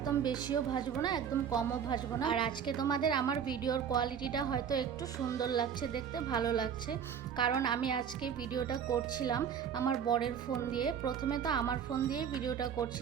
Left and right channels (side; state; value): left; quieter; 7.9 dB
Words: বেশিও ভাজবো না, একদম কমও ভাজবো না। আর আজকে তোমাদের আমার ভিডিওর কোয়ালিটিটা হয়তো একটু সুন্দর লাগছে, দেখতে ভালো লাগছে, কারণ আমি আজকে ভিডিওটা করছিলাম আমার বরের ফোন দিয়ে। প্রথমে তো আমার ফোন দিয়ে ভিডিওটা